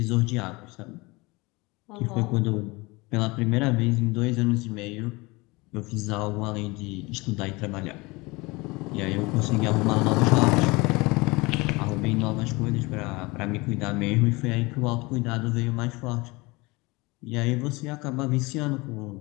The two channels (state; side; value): quieter; right; 24.1 dB